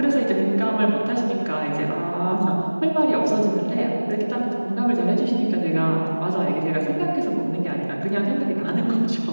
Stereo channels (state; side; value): inverted; both; correlation -1.00